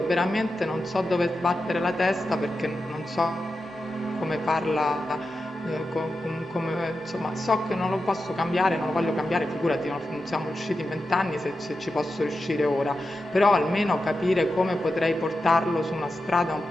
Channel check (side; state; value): both; normal; correlation 0.90